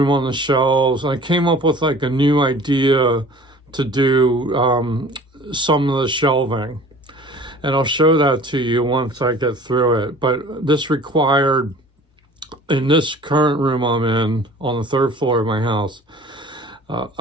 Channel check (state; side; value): normal; both; correlation 0.46